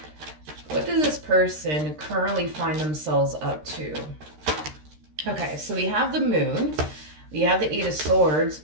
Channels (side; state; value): left; late; 13 ms